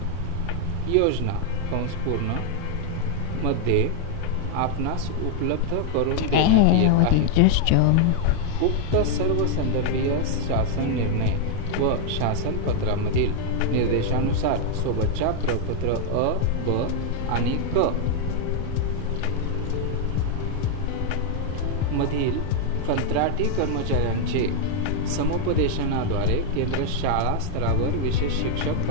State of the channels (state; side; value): different; both; correlation 0.00